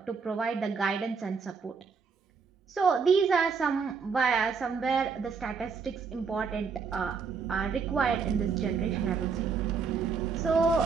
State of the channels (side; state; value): left; quieter; 5.5 dB